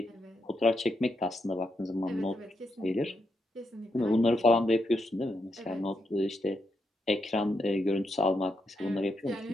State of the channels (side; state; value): both; normal; correlation 0.82